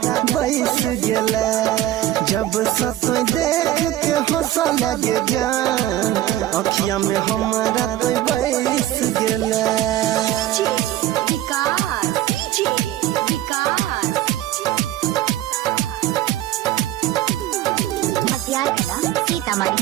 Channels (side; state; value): left; quieter; 13.6 dB